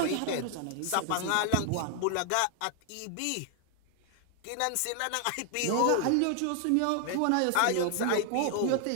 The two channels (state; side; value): different; both; correlation 0.00